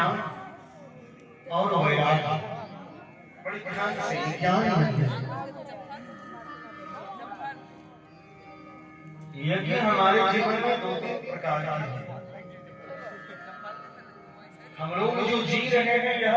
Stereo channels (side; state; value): both; identical; correlation 1.00